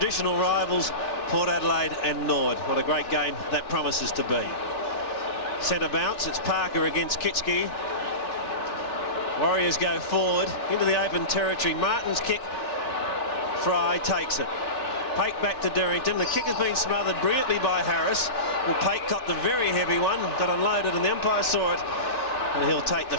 rivals Port Adelaide and Nord. What a great game that promises to be. Centre bounce. It's Parker against Kitski. Warriors go forward into the open territory. Martin's kick. Fry takes it. Pate back to Derrington. The kick has been smothered brilliantly by Harris. Well, Pate got the very heavy one, got unloaded, and the umpire saw it, and he'll take the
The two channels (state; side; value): late; right; 3.4 ms